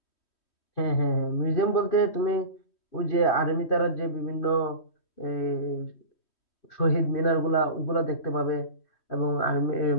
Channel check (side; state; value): right; late; 3.1 ms